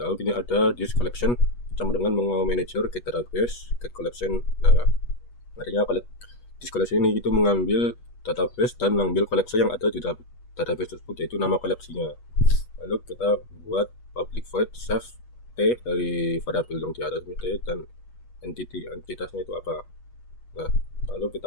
ini ada this collection sama dengan manager get database, get collection. Nah, artinya this collection ini itu mengambil database dan mengambil koleksi yang ada di database tersebut, yaitu nama koleksinya. Lalu kita buat public void save T dari variabel yang di atas ini T, dan entitasnya itu apa. Nah, lalu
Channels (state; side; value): late; right; 8.3 ms